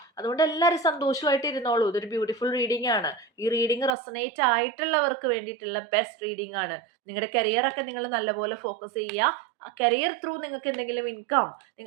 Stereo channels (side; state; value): left; drops out; at 4.0 s